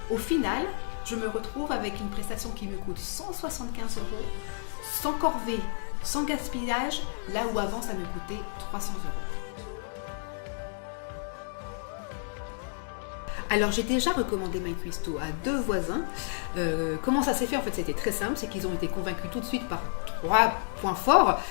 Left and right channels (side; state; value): right; silent; digital silence